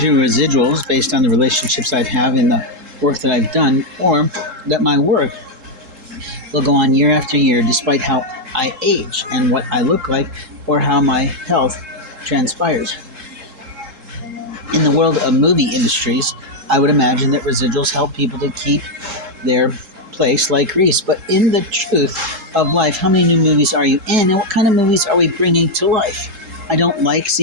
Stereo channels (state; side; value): late; left; 3.7 ms